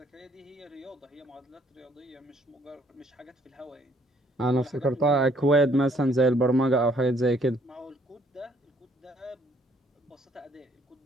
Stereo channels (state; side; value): normal; both; correlation 0.65